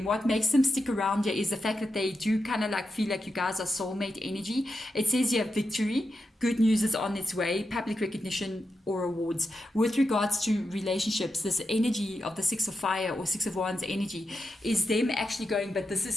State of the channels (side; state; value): both; normal; correlation 0.87